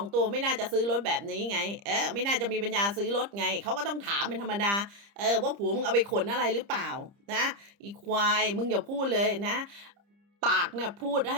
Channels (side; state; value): left; late; 30 ms